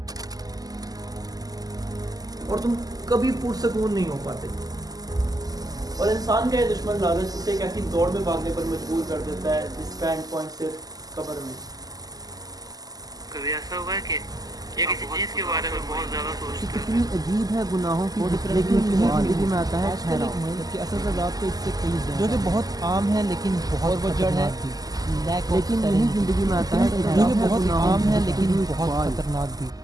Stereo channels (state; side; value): late; left; 0.18 ms